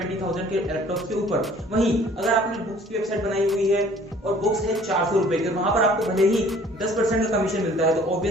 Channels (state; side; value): normal; both; correlation 0.53